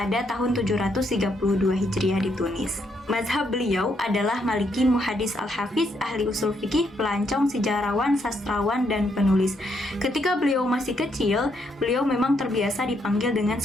tahun 732 Hijriah di Tunis. Mazhab beliau adalah Maliki, muhadis al-hafiz, ahli usul fikih, pelancong, sejarawan, sastrawan, dan penulis. Ketika beliau masih kecil, beliau memang terbiasa dipanggil dengan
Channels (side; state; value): both; normal; correlation 0.75